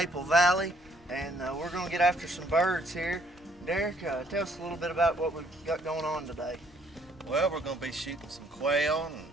Valley, and we're going to get after some birds here. Derek, tell us a little bit about what we've got going on today. Well, we're going to be shooting some quail,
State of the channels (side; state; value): both; normal; correlation 0.65